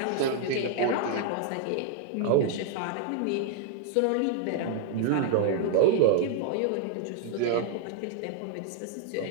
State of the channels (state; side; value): different; both; correlation 0.00